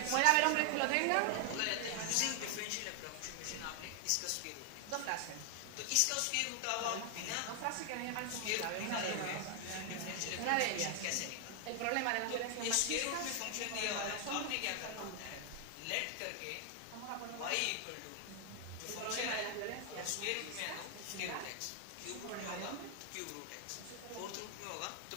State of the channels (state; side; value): different; both; correlation 0.00